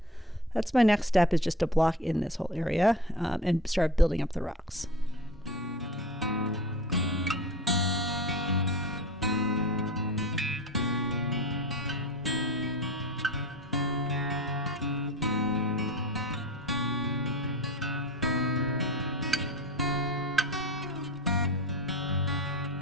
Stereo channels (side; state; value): both; normal; correlation 0.35